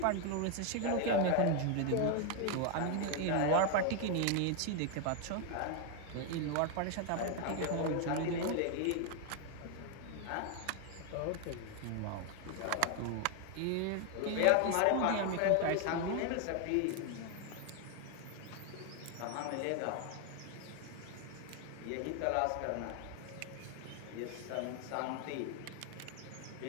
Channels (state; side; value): different; both; correlation 0.01